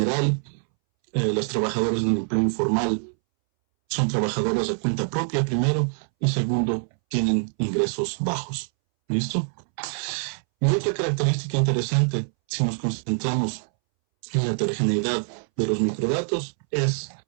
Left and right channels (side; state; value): left; silent; 62 dB below the other